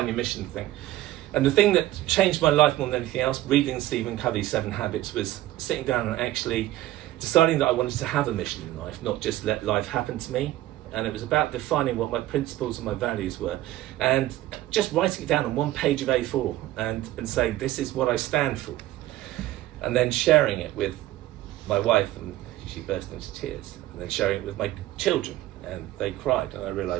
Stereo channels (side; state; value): left; quieter; 15.3 dB